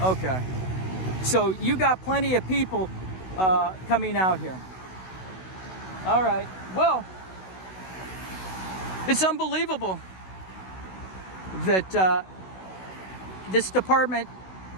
Okay. So you got plenty of people coming out here. All right. Well, it's unbelievable that this department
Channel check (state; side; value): late; right; 16 ms